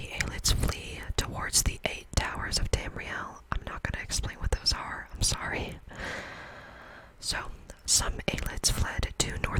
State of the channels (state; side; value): identical; both; correlation 1.00